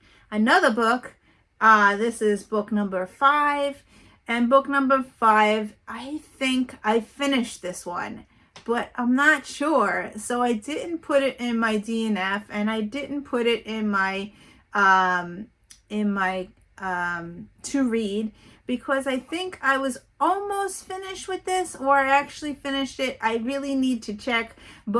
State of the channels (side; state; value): both; identical; correlation 1.00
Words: Another book, this is book number 5. And book number 5, I think I finished this one, but I'm not sure. So I didn't put it in my DNF, and I didn't put it in my to read, because I think I was almost finished with this, or I actually finished it. I really need to check.